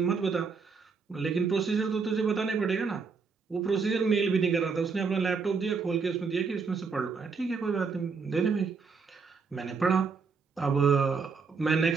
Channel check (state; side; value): quieter; left; 5.1 dB